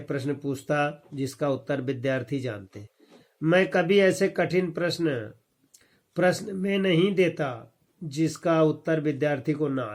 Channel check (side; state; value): both; identical; correlation 1.00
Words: प्रश्न पूछता जिसका उत्तर विद्यार्थी जानते। मैं कभी ऐसे कठिन प्रश्न में नहीं देता जिसका उत्तर विद्यार्थी को ना